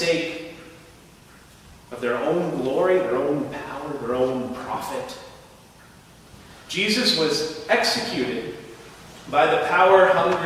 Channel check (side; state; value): both; identical; correlation 1.00